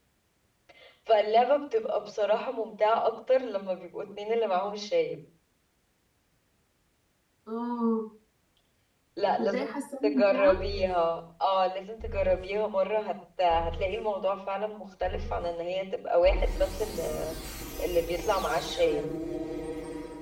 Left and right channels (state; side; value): identical; both; correlation 1.00